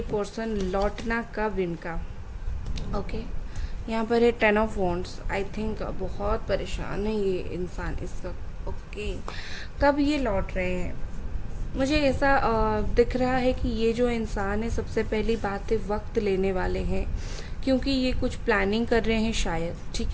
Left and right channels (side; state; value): both; identical; correlation 1.00